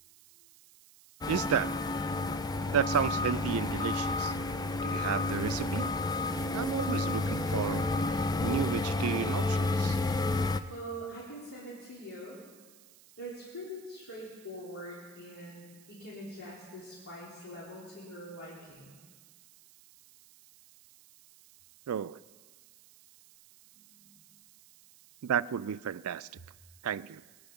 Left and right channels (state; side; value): noise; right; hiss, 25 dB below the sound